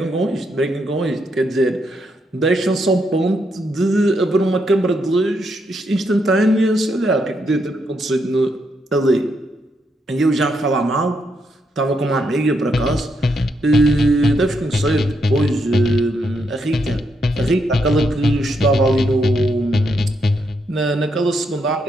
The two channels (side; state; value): both; normal; correlation 0.79